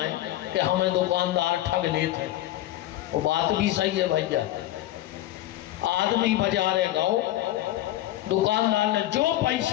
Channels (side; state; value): right; quieter; 14.7 dB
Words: कि हमें दुकानदार ठग लेते। वो बात भी सही है भैया। आदमी बाजारे गो, दुकानदार ने जो